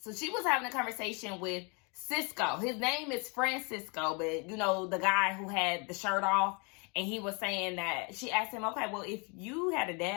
she was having a conversation with Cisco. His name is Francisco, but the guy who had the shirt off, and he was saying that she asked him, okay, well, if you had a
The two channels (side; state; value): right; quieter; 32.4 dB